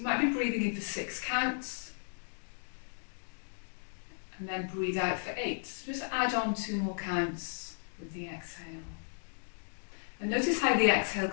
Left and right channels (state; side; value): silent; right; digital silence